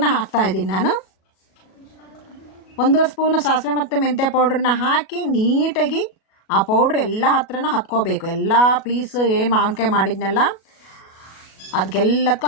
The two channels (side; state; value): right; late; 37 ms